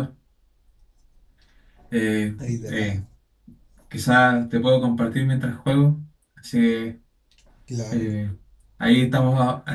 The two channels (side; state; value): both; identical; correlation 1.00